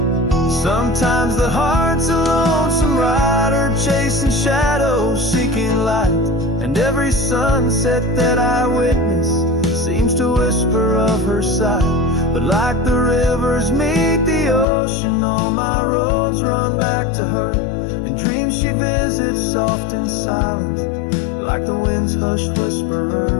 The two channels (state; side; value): drops out; right; at 14.7 s